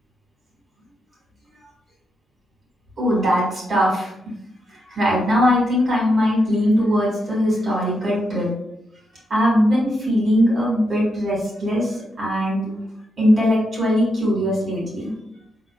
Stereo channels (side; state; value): both; normal; correlation 0.83